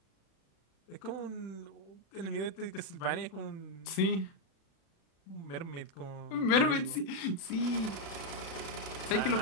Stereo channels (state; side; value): late; right; 36 ms